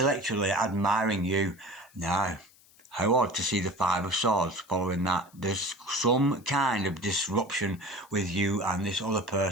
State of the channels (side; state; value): left; noise; hiss, 28 dB below the sound